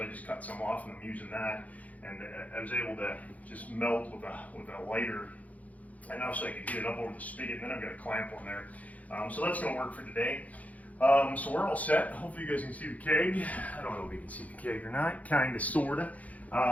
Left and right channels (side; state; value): right; late; 0.072 ms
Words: I just cut some off, and I'm using that. And I was able to just melt with a lighter enough so I could get it up over the spigot. And then I've got a clamp on there. So that's going to work for today. So we're all set. Hopefully you guys can see the keg. I don't know if you can see the keg or not. Kind of, sort of.